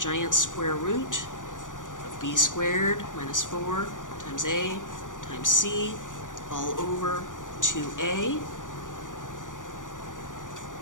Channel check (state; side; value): late; right; 0.88 ms